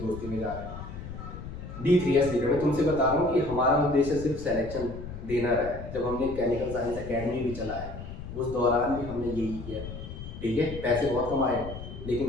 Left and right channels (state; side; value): noise; left; rumble, 10 dB below the sound